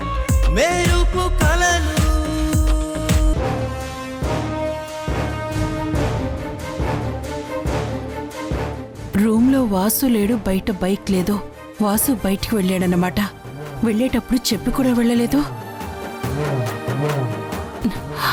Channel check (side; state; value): both; identical; correlation 1.00